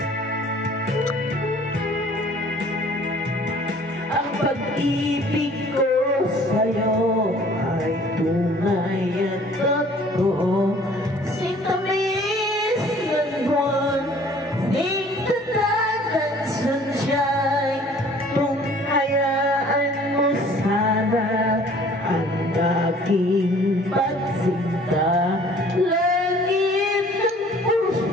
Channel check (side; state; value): both; normal; correlation 0.53